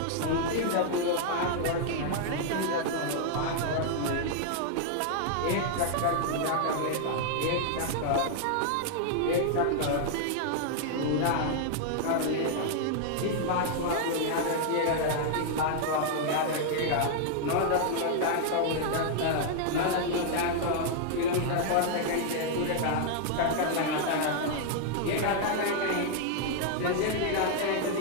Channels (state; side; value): different; both; correlation -0.01